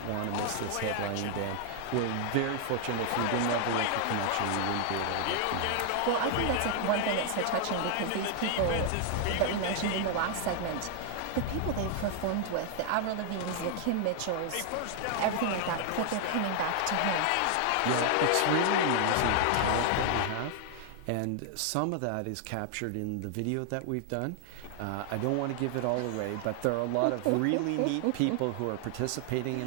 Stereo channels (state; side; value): different; both; correlation 0.00